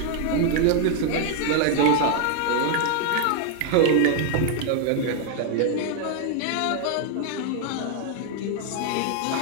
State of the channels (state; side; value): different; both; correlation 0.00